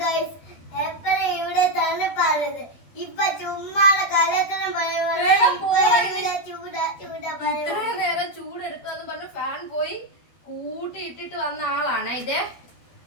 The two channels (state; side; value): late; right; 12 ms